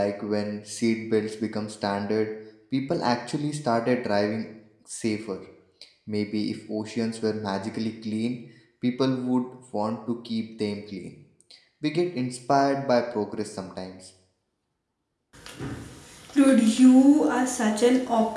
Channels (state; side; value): identical; both; correlation 1.00